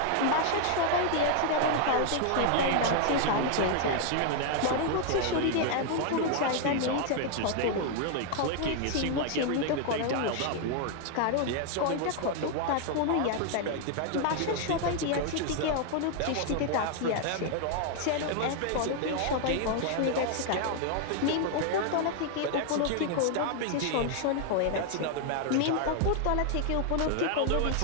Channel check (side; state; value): both; different; correlation 0.00